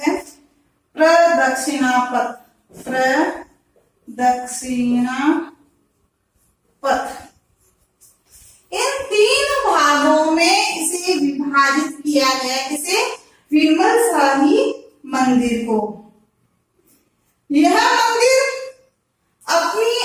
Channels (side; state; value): both; identical; correlation 1.00